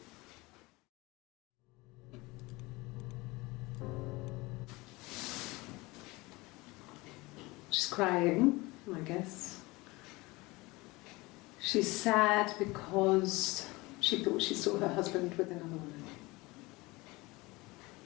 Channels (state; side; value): quieter; right; 22.7 dB